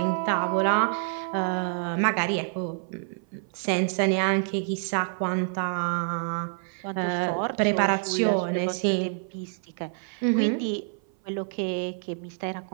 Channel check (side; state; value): left; silent; 57 dB below the other